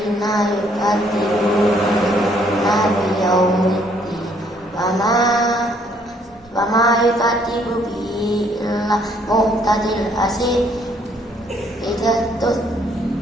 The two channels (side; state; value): both; normal; correlation 0.66